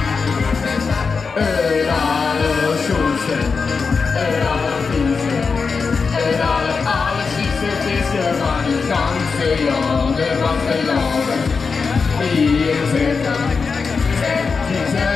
Alle schoonste, allervieste, allerziekste visser van het ganse land, van de landen. Hier zitten, die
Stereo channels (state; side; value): quieter; right; 5.0 dB